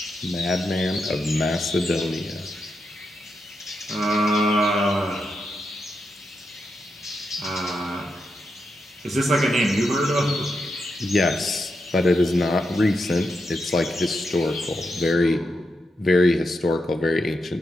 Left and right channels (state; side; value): normal; both; correlation 0.85